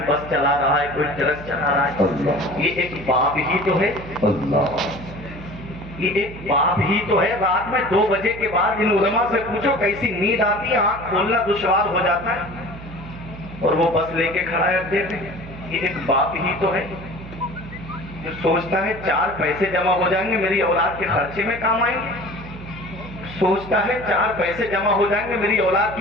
بس چلا رہا ہے، کوئی ٹرک چلا رہا ہے. یہ ایک باپ ہی تو ہے، یہ ایک باپ ہی تو ہے. رات میں 2 بجے کے بعد ان علماء سے پوچھو کیسی نیند آتی ہے، آنکھ کھولنا دشوار ہو جاتا ہے، اور وہ بس لے کے کھڑا ہے اڈے پہ. یہ ایک باپ ہی تو ہے جو سوچتا ہے 4 پیسے جمع ہو جائیں گے میری اولاد کے خرچے میں کام آئیں گے، سوچتا ہے 4 پیسے جمع ہو جائیں گے میری اولاد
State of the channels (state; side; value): noise; right; hum, 14 dB below the sound